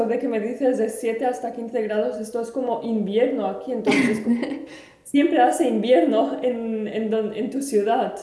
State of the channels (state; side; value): identical; both; correlation 1.00